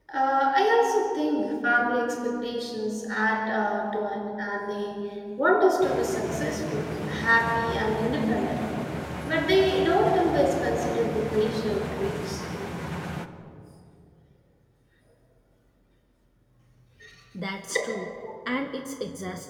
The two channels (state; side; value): identical; both; correlation 1.00